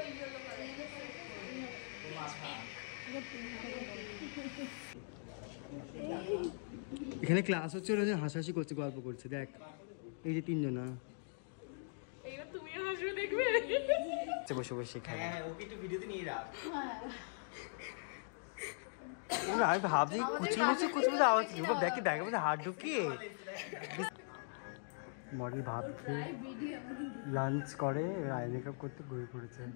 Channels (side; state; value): right; silent; digital silence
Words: এখানে ক্লাস হচ্ছে, ওরা হাসাহাসি করছে, গল্প করছে। দেখ এই যে তিনজনা, এইবার তুমিও হাসবে, দেখবে বসে বসে। হ্যাঁ, ওকে একটু ভিডিওতে নিয়ে রাখ। আমি ভাবছি কুচকুচি কুচকুচি আওয়াজ কি, দেখি ব্যাগের মধ্যে হাত ঢুকিয়ে মডেল ভাবছে লাঞ্চ করে, আই মেকআপ করতে ঘুরে পড়েছে।